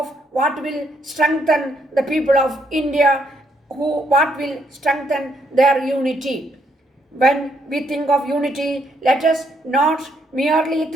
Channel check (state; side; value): normal; both; correlation 0.73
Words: what will strengthen the people of India, what will strengthen their unity. When we think of unity, let us not merely